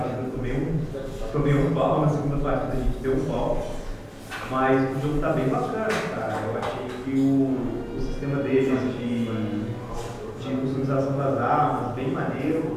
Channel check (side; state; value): both; identical; correlation 1.00